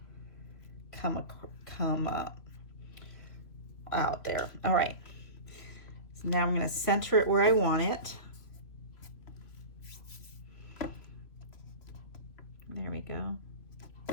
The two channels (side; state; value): right; late; 3.0 ms